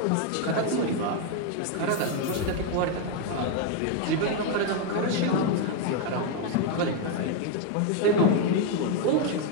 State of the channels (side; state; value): both; different; correlation 0.01